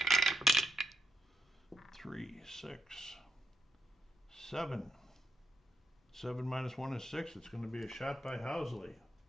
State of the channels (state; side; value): normal; both; correlation 0.83